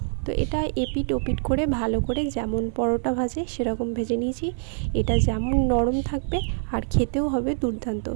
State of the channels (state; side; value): silent; left; 62 dB below the other